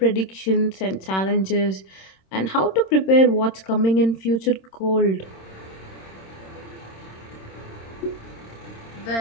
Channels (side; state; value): right; late; 26 ms